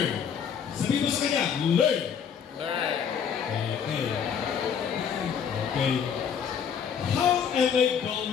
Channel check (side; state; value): right; quieter; 7.5 dB